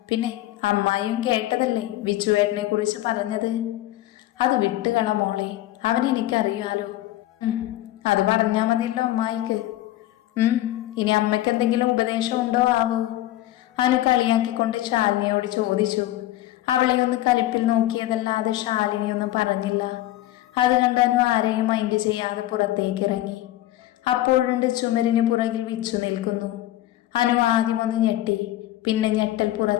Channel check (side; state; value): right; quieter; 15.0 dB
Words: പിന്നെ അമ്മായിയും കേട്ടതല്ലേ വിച്ചുവേട്ടനെ കുറിച്ച് പറഞ്ഞത്. അത് വിട്ടുകള മോളെ, അവനെനിക്കറിയാലോ. അത് പറഞ്ഞാ മതിയല്ലോ അമ്മായിക്ക്. ഇനി അമ്മയ്ക്ക് എന്തെങ്കിലും ഉപദേശം ഉണ്ടോ ആവോ? അനു കളിയാക്കിക്കൊണ്ട് ശാലിനിയോട് ചോദിച്ചു. അവളെ ഒന്ന് കലിപ്പിൽ നോക്കിയതല്ലാതെ ശാലിനി ഒന്നും പറഞ്ഞില്ല. അത് കണ്ട് അനു ആരെയും മൈൻഡ് ചെയ്യാതെ പുറത്തേക്ക് ഇറങ്ങി. അപ്പോഴുണ്ട് ചുമരിന് പുറകിൽ വിച്ചു നിൽക്കുന്നു. അനു ആദ്യം ഒന്ന് ഞെട്ടി, പിന്നെ ഞെട്ടൽ